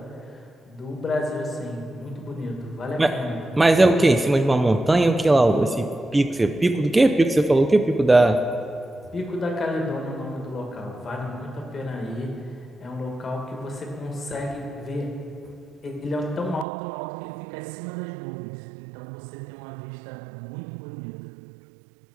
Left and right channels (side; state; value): left; drops out; at 16.7 s